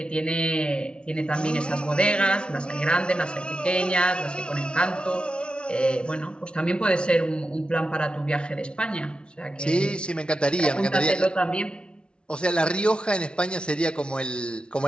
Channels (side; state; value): right; late; 0.056 ms